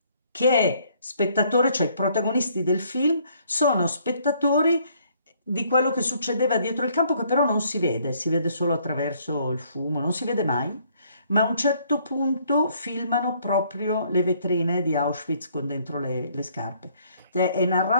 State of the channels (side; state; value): both; inverted; correlation -0.65